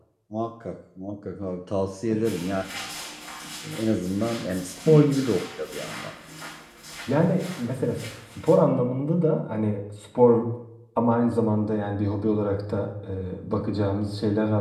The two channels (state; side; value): identical; both; correlation 1.00